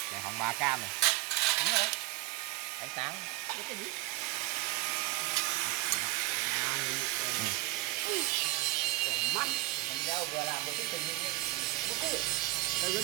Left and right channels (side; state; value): left; quieter; 19.7 dB